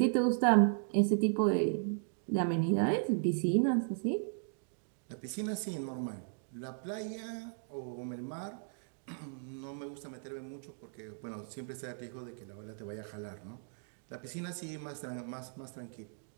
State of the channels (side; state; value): left; silent; digital silence